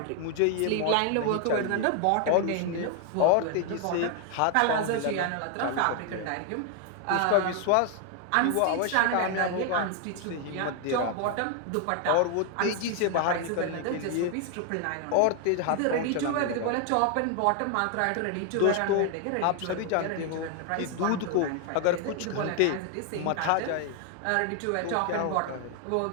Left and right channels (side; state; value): both; different; correlation 0.00